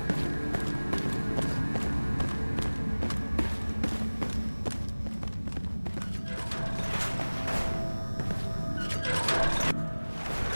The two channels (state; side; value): inverted; both; correlation -1.00